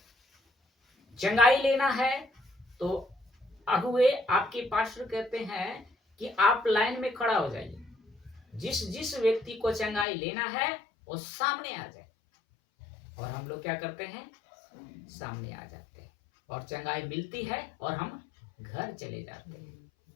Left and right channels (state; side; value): drops out; right; at 10.1 s